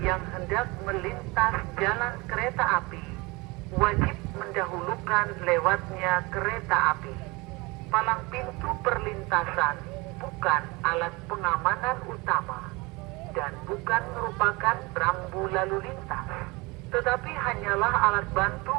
yang hendak melintas jalan kereta api wajib mendahulukan lewatnya kereta api. Palang pintu perlintasan bukan alat pengamanan utama dan bukan merupakan rambu lalu lintas, tetapi hanyalah alat bantu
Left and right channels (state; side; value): quieter; left; 24.8 dB